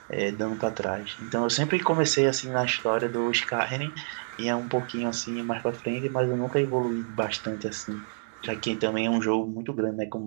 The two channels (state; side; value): silent; left; digital silence